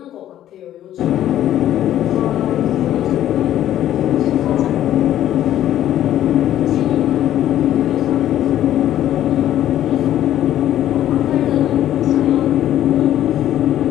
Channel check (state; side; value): quieter; right; 12.0 dB